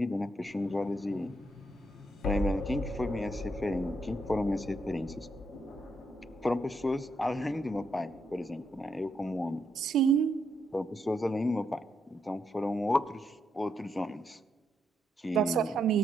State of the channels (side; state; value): both; normal; correlation 0.80